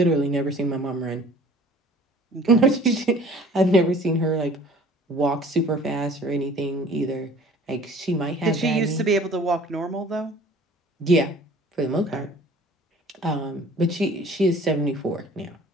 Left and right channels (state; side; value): normal; both; correlation 0.49